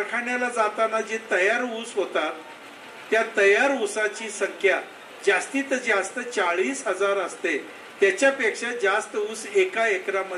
जाताना जे तयार ऊस होतात त्या तयार ऊसाची संख्या जास्तीत जास्त 40,000 असते. त्याच्यापेक्षा जास्त ऊस एका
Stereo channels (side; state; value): both; identical; correlation 1.00